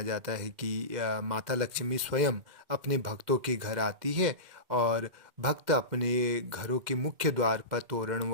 जाता है कि माता लक्ष्मी स्वयं अपने भक्तों के घर आती है और भक्त अपने घरों के मुख्य द्वार पर तोरण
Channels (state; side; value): late; left; 2.1 ms